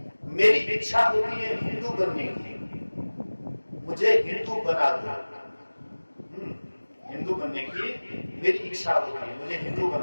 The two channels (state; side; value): inverted; both; correlation -1.00